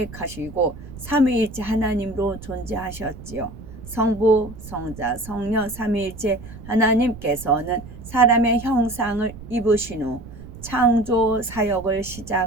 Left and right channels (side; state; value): right; noise; rumble, 15 dB below the sound